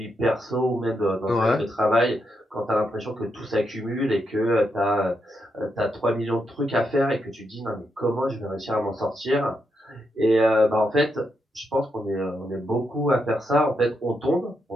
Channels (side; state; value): both; normal; correlation 0.82